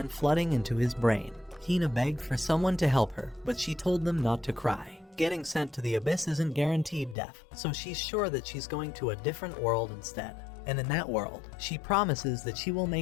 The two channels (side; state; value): right; drops out; at 7.2 s